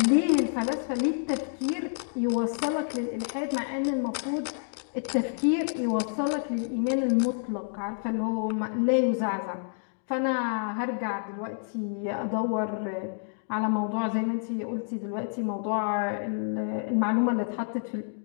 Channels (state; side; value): silent; right; digital silence